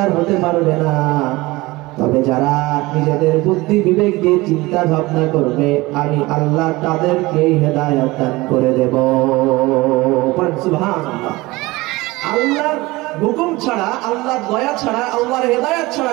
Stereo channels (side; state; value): left; quieter; 21.1 dB